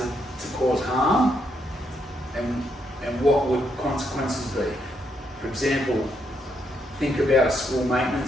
to cause harm, and what would consequences be? For example, think about a school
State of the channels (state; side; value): normal; both; correlation 0.77